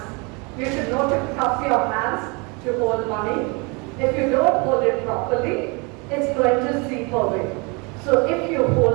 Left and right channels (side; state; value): left; quieter; 29.9 dB